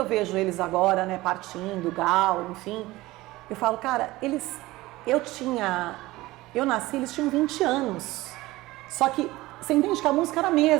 vejo eles agora, né, partindo, Gal, enfim, eu falo, cara, eu nasci, eles tinham 20 anos, só que você entende que a música era a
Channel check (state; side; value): quieter; left; 18.8 dB